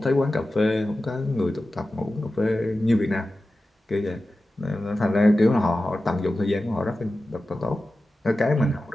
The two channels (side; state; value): both; normal; correlation 0.94